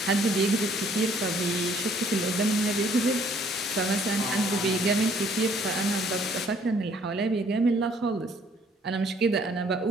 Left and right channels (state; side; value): normal; both; correlation 0.61